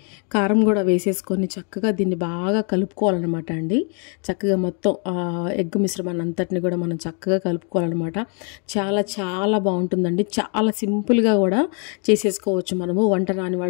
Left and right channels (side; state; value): right; quieter; 38.9 dB